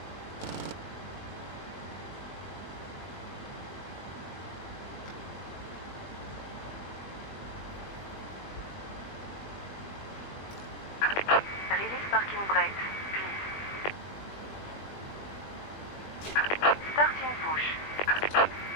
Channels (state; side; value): late; right; 20 ms